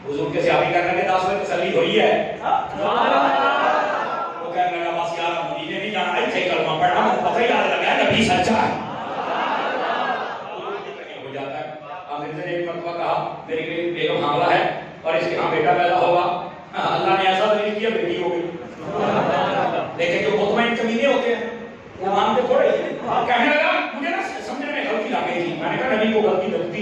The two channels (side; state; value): both; identical; correlation 1.00